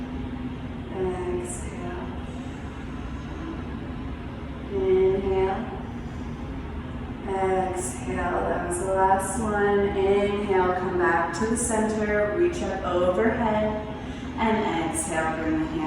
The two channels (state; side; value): identical; both; correlation 1.00